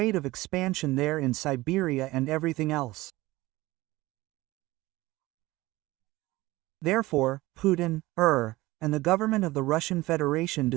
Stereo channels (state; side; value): quieter; left; 19.3 dB